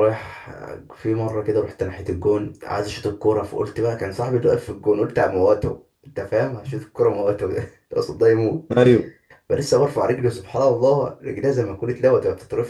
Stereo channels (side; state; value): both; identical; correlation 1.00